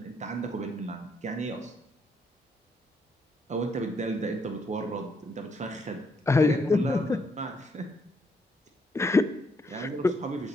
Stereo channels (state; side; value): normal; both; correlation 0.73